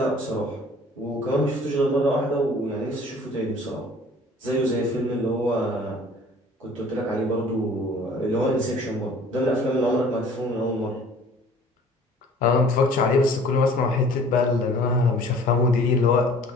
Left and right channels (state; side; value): normal; both; correlation 0.50